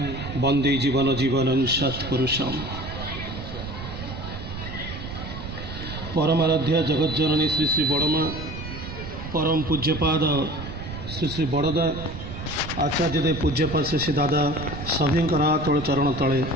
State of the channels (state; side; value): noise; right; rumble, 9 dB below the sound